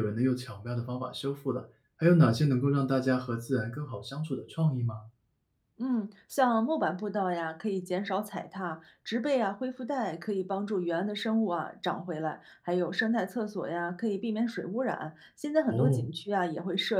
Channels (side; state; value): both; identical; correlation 1.00